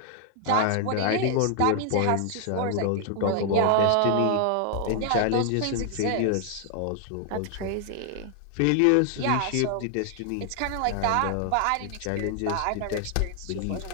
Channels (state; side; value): different; both; correlation 0.00